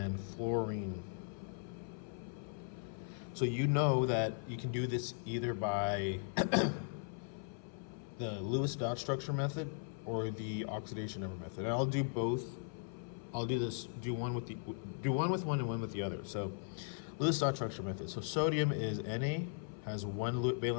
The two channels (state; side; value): silent; right; 52 dB below the other